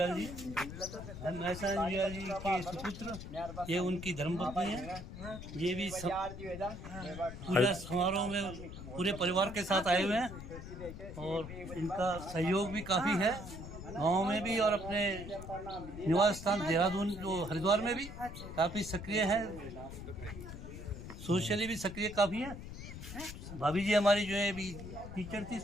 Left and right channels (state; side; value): noise; left; rumble, 11 dB below the sound